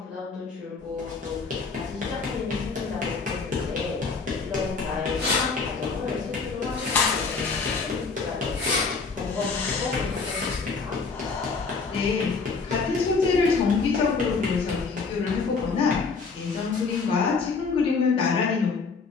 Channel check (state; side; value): quieter; right; 4.7 dB